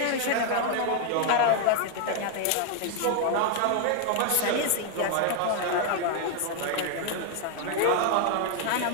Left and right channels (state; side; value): different; both; correlation 0.00